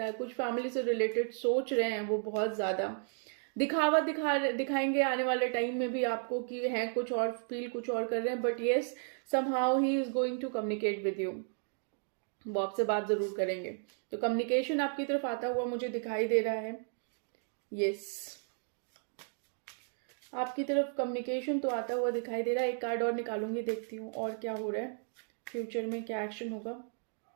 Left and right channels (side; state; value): left; silent; 55 dB below the other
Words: है। कुछ फैमिली से रिलेटेड सोच रहे हैं वो बहुत ज्यादा, दिखावा दिखाएंगे आने वाले टाइम में भी आपको कि हैं कुछ और, फील कुछ और कर रहे हैं। But yes, somehow he is going to communicate with you, वो आपसे बात जरूर करेंगे। तो कम्युनिकेशन आपकी तरफ आता हुआ मुझे दिखाई दे रहा है। यस, आपकी तरफ कम्युनिकेशन तो आता हुआ दिखाई दे रहा है। एक कार्ड और निकालूंगी, देखती हूँ और क्या हो रहा है फ्यूचर में, क्या एक्शन होगा।